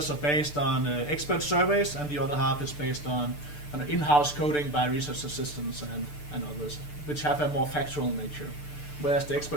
are based on expert surveys, and the other half is based on in-house coding by research assistants and others, which have a more factual nature, whereas the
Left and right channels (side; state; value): right; late; 6.8 ms